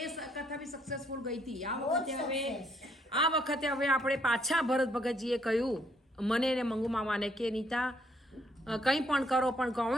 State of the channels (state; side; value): normal; both; correlation 0.69